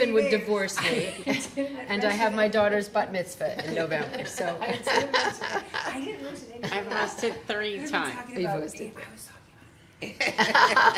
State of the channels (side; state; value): both; identical; correlation 1.00